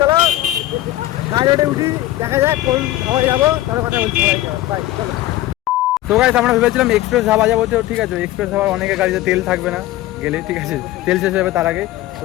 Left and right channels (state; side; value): quieter; right; 15.4 dB